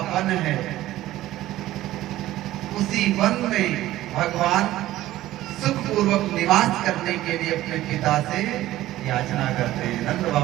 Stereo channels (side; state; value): left; quieter; 15.1 dB